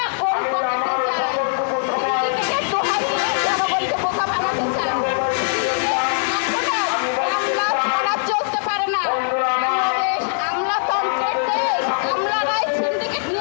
কোন পকেটে যায়। সিন্ডিকেটের দোহাই দিয়ে জনগণকে বোকা বানাতে চান। এখনো আমলা ছাড়া চলতে পারে না। বাংলাদেশ আমলাতন্ত্রের দেশ। আমলারাই সিন্ডিকেট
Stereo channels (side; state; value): right; silent; 65 dB below the other